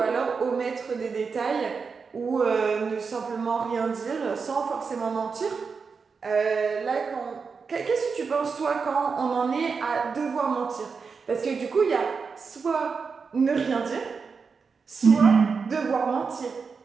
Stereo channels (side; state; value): left; quieter; 5.3 dB